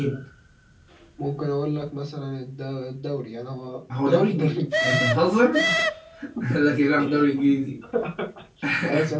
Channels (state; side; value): identical; both; correlation 1.00